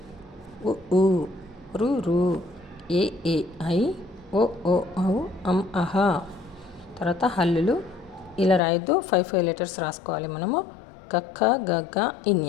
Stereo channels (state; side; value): drops out; right; at 8.6 s